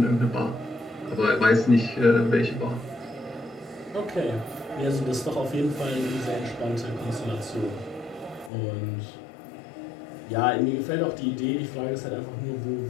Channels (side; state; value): right; drops out; at 8.5 s